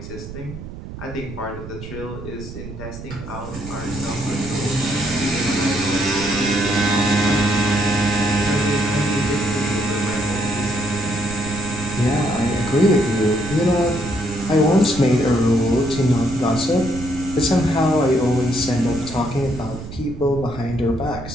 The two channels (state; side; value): noise; right; rumble, 11 dB below the sound